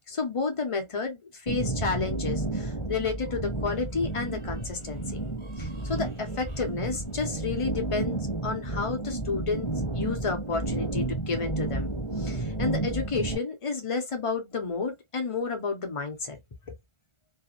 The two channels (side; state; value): right; late; 1.5 ms